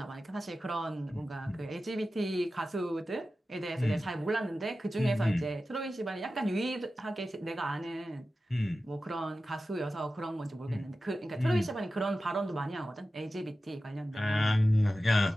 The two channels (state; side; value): normal; both; correlation 0.94